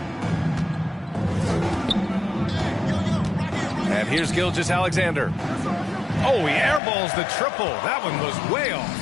And here's Gilgeous-Alexander. Oh, he airballs the triple. That one was way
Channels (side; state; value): right; drops out; at 6.8 s